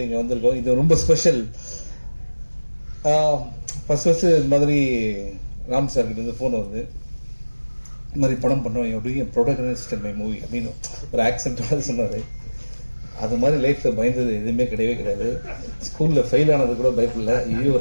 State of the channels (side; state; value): both; inverted; correlation -1.00